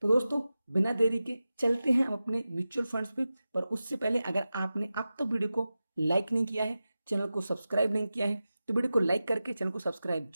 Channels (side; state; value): both; inverted; correlation -0.94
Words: तो दोस्तों बिना देरी के चलते हैं हम अपने म्यूचुअल फंड्स पे। पर उससे पहले अगर आपने अब तक वीडियो को लाइक नहीं किया है, चैनल को सब्सक्राइब नहीं किया है, तो वीडियो को लाइक करके चैनल को सब्सक्राइब